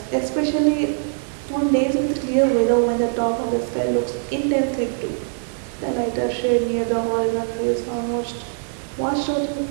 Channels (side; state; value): left; silent; digital silence